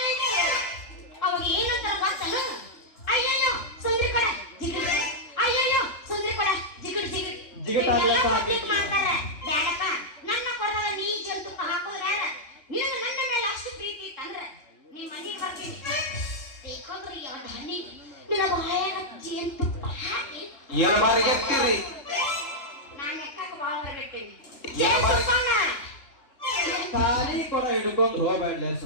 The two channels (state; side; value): late; right; 3.3 ms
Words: ಅವಾಗ ಏನಂತಾರ ಗೊತ್ತನ? ಅಯ್ಯಯ್ಯೋ ಸುಂದ್ರಿ ಕಡೆ ಜಿಗಿಡ್, ಅಯ್ಯಯ್ಯೋ ಸುಂದ್ರಿ ಕಡೆ ಜಿಗಿಡ್ ಜಿಗಿಡ್ ಜಿಗಿಡ್ ಮಾಡ್ತಾರೆ. ಬೇಡಪ್ಪ ನನ್ನ ಕೊಡದಾಗ ನೀ ಜೇನು ತುಪ್ಪ ಹಾಕೋದು ಬೇಡ. ನಿನಗೆ ನನ್ನ ಮೇಲೆ ಅಷ್ಟು ಪ್ರೀತಿ ಇತ್ತಂದ್ರೆ ನಿಮ್ಮ ಮನೆಗೆ ಬರ್ತೀನಿ. ಬೇಕಂದ್ರೆ ಎರಡು ಹನಿ ನಿನ್ನ ಬಾಯಾಗ ಜೇನು ತುಪ್ಪ ಹಾಕಿ ಎರಡು ಬಾರಿ ಎತ್ತಿರಿ. ನಾನು ಎಕ್ಕಕ್ಕೆ ಬಾಳ ಬಿಡ್ತೀನಿ. ಖಾಲಿ ಕೊಡ ಹಿಡ್ಕೊಂಡು ಹೋಗ್ಬೇಡ